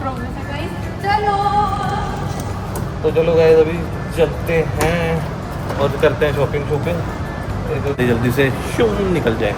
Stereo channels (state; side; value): identical; both; correlation 1.00